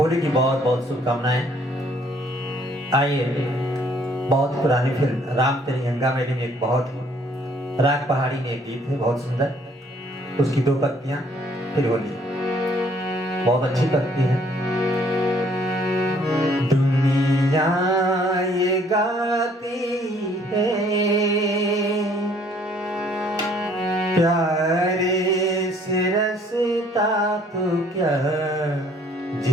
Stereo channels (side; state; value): both; normal; correlation 0.62